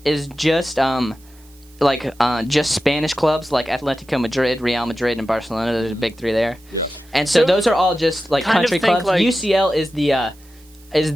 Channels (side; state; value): right; noise; hiss, 29 dB below the sound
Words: is just just Spanish clubs like Atletico Madrid, Real Madrid, and Barcelona. There's a big 3 there. Yeah. And so those are all just like kind of country think clubs. like- UCL is